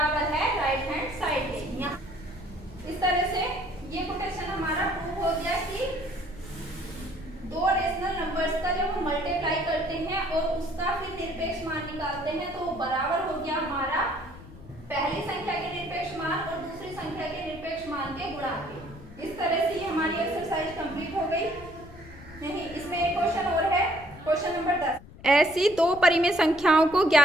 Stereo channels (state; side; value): noise; left; rumble, 18 dB below the sound